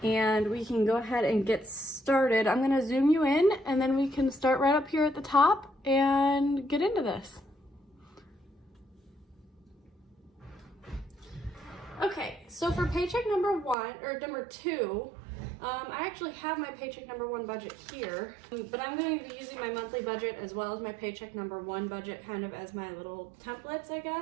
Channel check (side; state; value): left; drops out; at 13.8 s